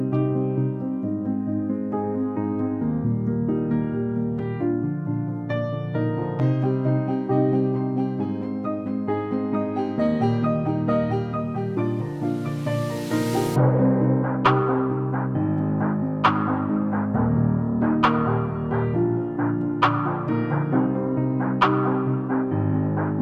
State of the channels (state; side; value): identical; both; correlation 1.00